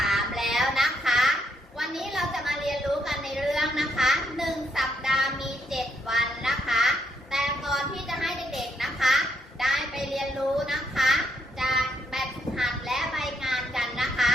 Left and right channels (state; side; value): normal; both; correlation 0.75